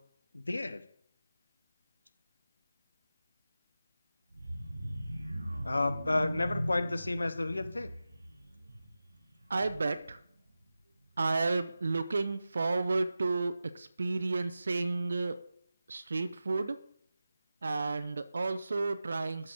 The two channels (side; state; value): both; inverted; correlation -0.94